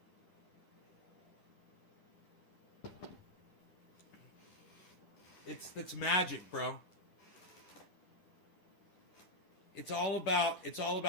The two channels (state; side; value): late; right; 10 ms